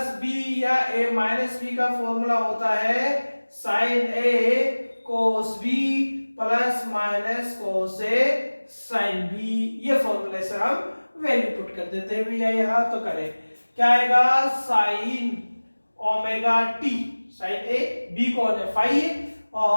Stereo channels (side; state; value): both; inverted; correlation -1.00